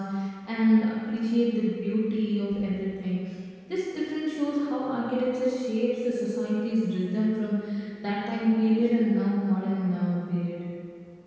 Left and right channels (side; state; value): both; identical; correlation 1.00